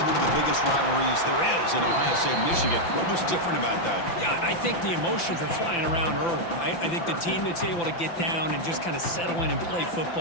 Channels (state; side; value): late; right; 5.9 ms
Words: one of the biggest rivalries there is in Ohio State, Michigan? What was different about that? Yeah, I think the emotions are flying around early. I think the team that's able to get down and just kind of settle in and play